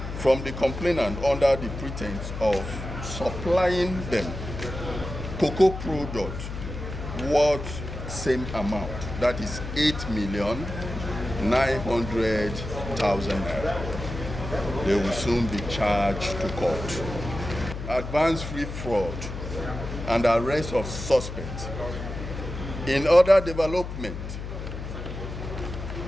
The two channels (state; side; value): noise; left; hum, 8 dB below the sound